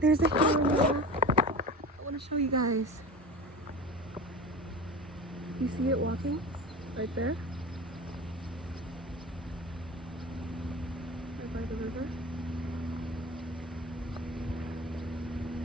there's a camera. I want to show you guys. You see it walking right there? Right by the river.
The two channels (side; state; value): both; normal; correlation 0.33